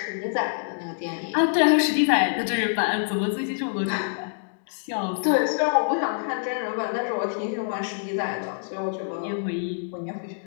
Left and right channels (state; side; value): silent; right; digital silence